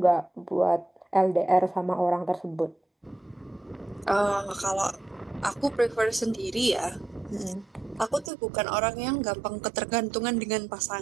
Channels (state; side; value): drops out; left; at 8.3 s